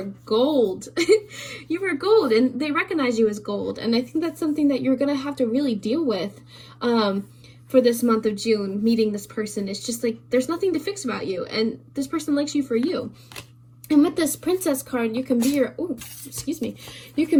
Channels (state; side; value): identical; both; correlation 1.00